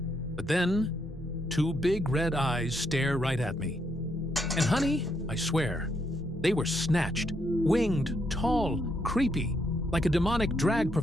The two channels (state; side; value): normal; both; correlation 0.76